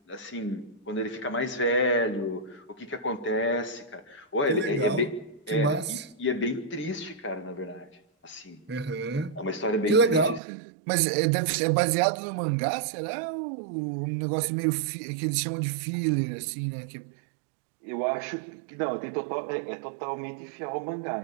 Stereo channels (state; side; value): drops out; left; at 10.4 s